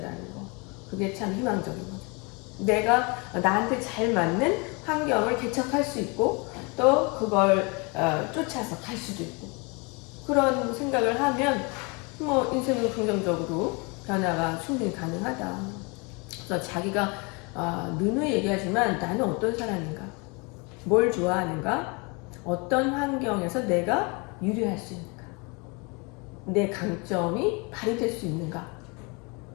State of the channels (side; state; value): right; quieter; 30.0 dB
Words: 거. 그게 참 희망적인 거죠. 내가 나한테 잘 맞는 환경을 개척할 수 있고 또 그걸 쫓아서 갈 수도 있고 그런 생각을 하면 뭐 인생은 긍정적으로 변화가 충분히 가능하다. 그래서 자기가 누누이 얘기하지만 나는 어떤 사람인가, 뭘 좋아하는가, 어떤 환경에서 내가 유리할 수 있는가, 내 강점이 발휘될 수 있는가,